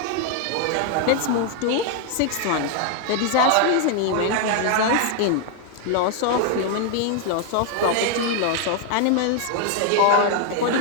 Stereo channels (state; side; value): different; both; correlation 0.00